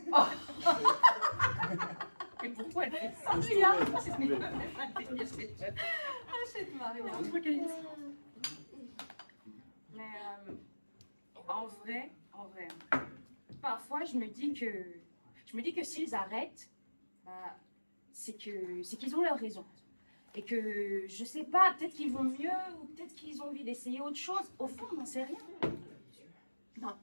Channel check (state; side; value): inverted; both; correlation -1.00